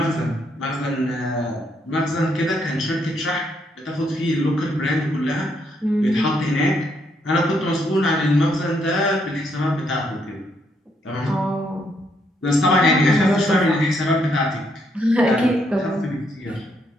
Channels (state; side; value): normal; both; correlation 0.74